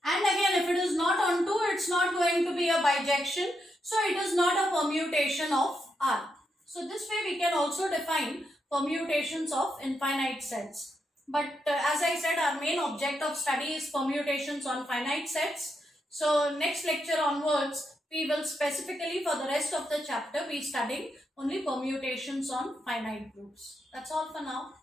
And again, if it is not onto, it's not going to be a bijection. So it is not a permutation of R. So this way we can also define permutations of infinite sets. But as I said, our main object of study is permutations on finite sets. So next lecture onwards, we will specifically for the rest of the chapter be studying only permutations on finite groups. That's all for now.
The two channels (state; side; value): normal; both; correlation 0.82